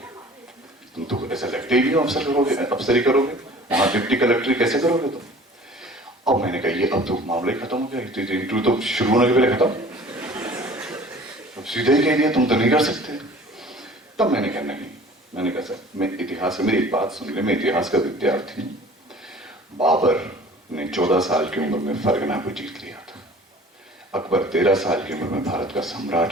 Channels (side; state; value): both; normal; correlation 0.47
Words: तुम तो ऐसा लगते ही नहीं अफसर करोगे, अफसरी करोगे, वहां डिप्टी कलेक्टर कैसे करोगे तुम। अब मैंने कहा ये अब तो मामला ही खत्म हो गया, इंटरव्यू तो शुरू होने के पहले खत्म, अब सीधे ही कह दिया तुम तो नहीं कर सकते। तब मैंने कहा नहीं, मैंने कहा सर मैं इतिहास में, मेरी एक बात सुन ले, मैं इतिहास का विद्यार्थी हूं, बाबर ने 14 साल की उम्र में फरगना को जीत लिया था, अकबर 13 साल की उम्र में भारत का